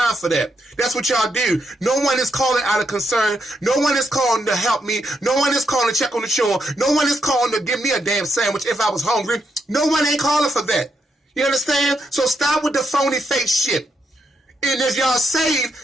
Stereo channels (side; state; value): both; normal; correlation 0.80